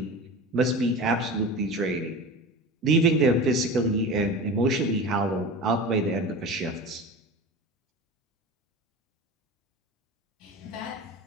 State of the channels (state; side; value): normal; both; correlation 0.32